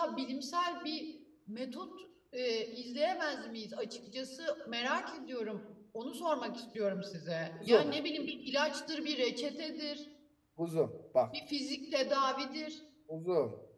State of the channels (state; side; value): identical; both; correlation 1.00